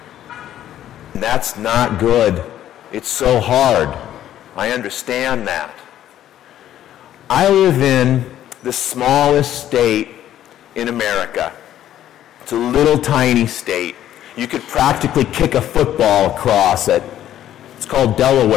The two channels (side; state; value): right; quieter; 11.8 dB